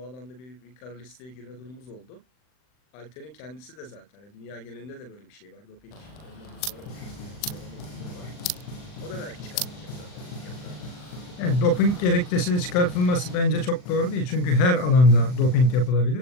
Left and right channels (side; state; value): right; late; 39 ms